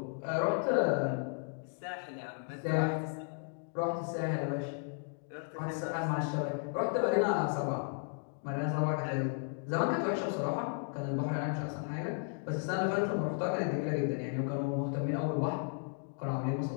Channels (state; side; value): silent; right; 55 dB below the other